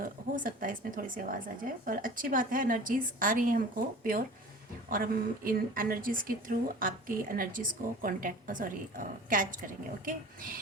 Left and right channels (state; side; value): normal; both; correlation 0.40